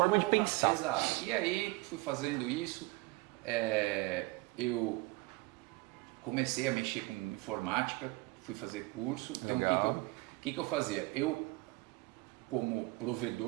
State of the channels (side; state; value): left; quieter; 22.6 dB